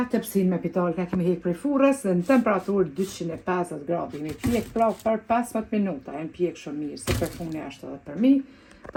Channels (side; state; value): both; identical; correlation 1.00